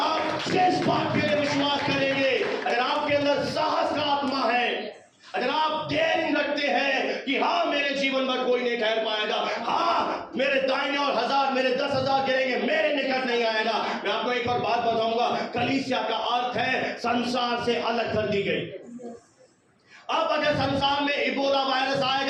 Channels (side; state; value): both; identical; correlation 1.00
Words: जिस बात के लिए विश्वास करेंगे अगर आप डेयरिंग रखते हैं कि हाँ मेरे जीवन में कोई नहीं ठहर पाएगा, हाँ मेरे दाहिने और 1000 मेरे 10,000 गिरेंगे, मेरे निकट नहीं आएगा। मैं आपको एक और बात बताऊंगा, कलीसिया का अर्थ है संसार से अलग कर दी गई। अब अगर संसार में इबोला वायरस